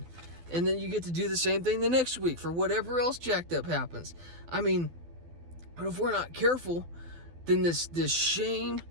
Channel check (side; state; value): left; late; 12 ms